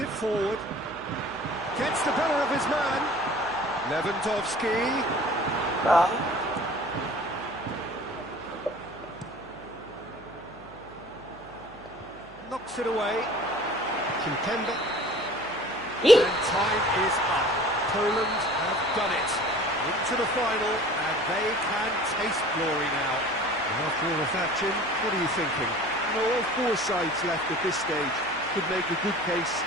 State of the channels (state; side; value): noise; right; hum, 22 dB below the sound